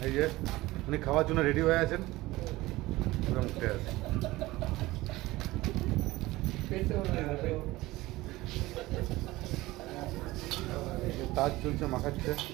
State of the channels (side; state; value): left; quieter; 18.9 dB